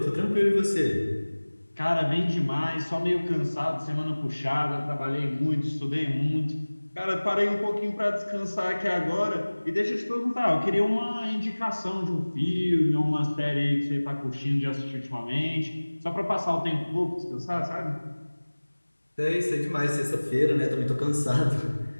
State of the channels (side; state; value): both; inverted; correlation -1.00